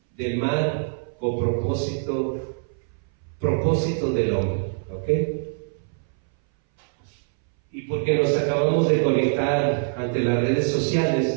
del Mal con propósito del hombre, ¿ok? Y porque nos acabamos de conectar ante las redes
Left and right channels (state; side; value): silent; left; 61 dB below the other